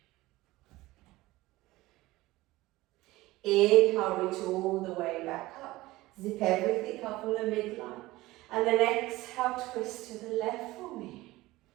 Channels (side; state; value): left; quieter; 18.7 dB